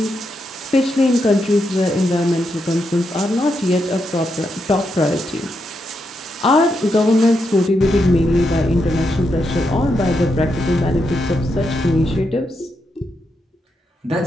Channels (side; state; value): both; normal; correlation 0.83